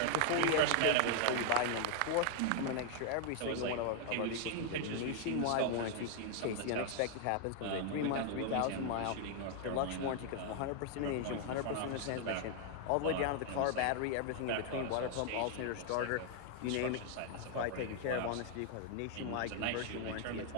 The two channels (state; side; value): different; both; correlation 0.00